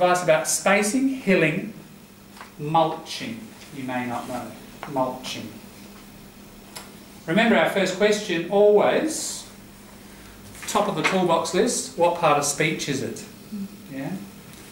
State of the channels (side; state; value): both; identical; correlation 1.00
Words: about spacing, hilling, mulching. You may not know, mulching. Remember our first question, always, top of the toolbox list, what part of speech is it? Yeah?